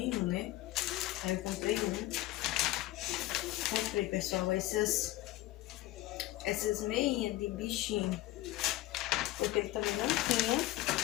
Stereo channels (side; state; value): right; quieter; 16.6 dB